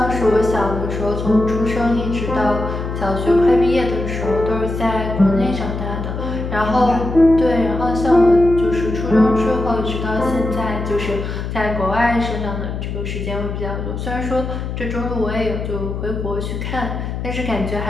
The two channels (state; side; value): noise; left; hum, 5 dB below the sound